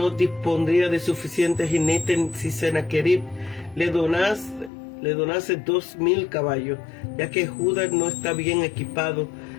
dispondría de suficientes jinetes si Sennacherib le donase 2,000 caballos, ya que Judá no está bien equipado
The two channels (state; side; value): drops out; right; at 4.7 s